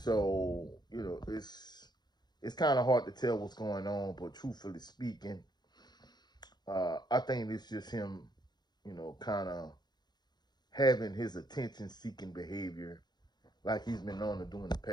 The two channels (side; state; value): right; late; 0.21 ms